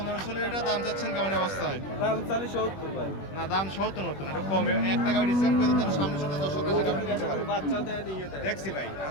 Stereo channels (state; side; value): late; right; 21 ms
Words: লিটার। দাম চাচ্ছেন কেমন অবস্থায়? দাম চালি 70 ভাই, না, দাম 70 মতন, একটু কম। একটা গাভি ডিসকাউন্ট করে দিতেন, সামনে সামনে দর্শকরা এসে গাভি নিতে পারে। বাচ্চা দেয় নিয়ে দেয় দেখছি ভাই,